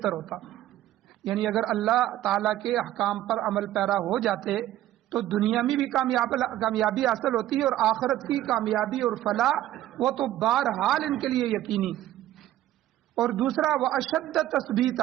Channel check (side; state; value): left; quieter; 13.7 dB